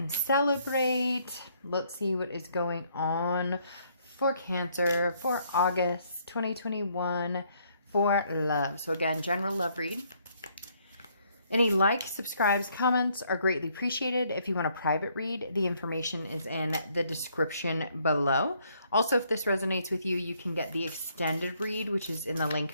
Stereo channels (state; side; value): inverted; both; correlation -0.68